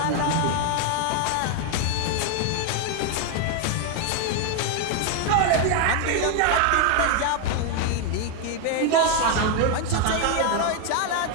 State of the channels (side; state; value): both; different; correlation 0.01